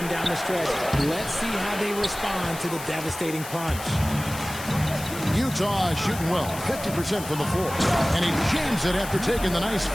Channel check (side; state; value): left; noise; hiss, 12 dB below the sound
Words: down the stretch. Let's see how they respond to the devastating punch. Utah is shooting well, 50% from the floor. And he jams it after taking the nice